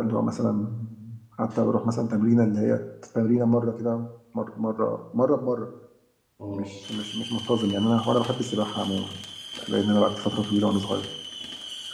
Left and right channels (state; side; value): identical; both; correlation 1.00